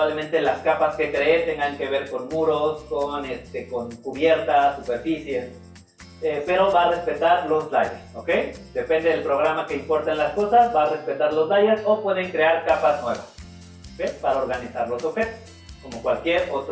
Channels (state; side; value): identical; both; correlation 1.00